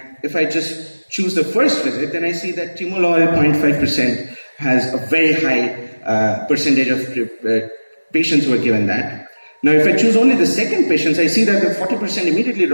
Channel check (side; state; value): both; inverted; correlation -1.00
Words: if I just choose the first visit, then I see that timolol 0.5% has a very high percentage of patients who are given that. Now, if I choose only the second patients, I see that the 40% immediately